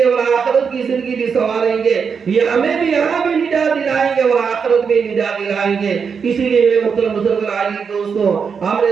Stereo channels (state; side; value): quieter; left; 6.1 dB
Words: اور آخرت کی زندگی بھی سنواریں گے. یہ ہمیں بھی یہاں بھی نجات دلائیں گے اور آخرت میں نجات دلائیں گے. اسی لیے میرے محترم بزرگ عزیز دوستوں، ہم نے